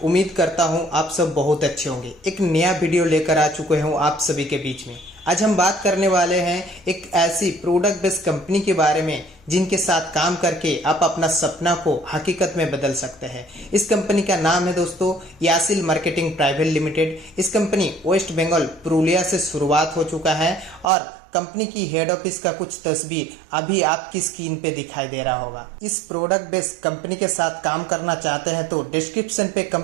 उम्मीद करता हूं आप सब बहुत अच्छे होंगे। एक नया वीडियो लेकर आ चुके हूं आप सभी के बीच में। आज हम बात करने वाले हैं एक ऐसी प्रोडक्ट बेस्ड कंपनी के बारे में जिनके साथ काम करके आप अपना सपना को हकीकत में बदल सकते हैं। इस कंपनी का नाम है दोस्तों यासिल मार्केटिंग प्राइवेट लिमिटेड। इस कंपनी वेस्ट बंगाल पुरुलिया से शुरुआत हो चुका है और कंपनी की हेड ऑफिस का कुछ तस्वीर अभी आपकी स्क्रीन पे दिखाई दे रहा होगा। इस प्रोडक्ट बेस्ड कंपनी के साथ काम करना चाहते हैं तो डिस्क्रिप्शन पे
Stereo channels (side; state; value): left; drops out; at 20.9 s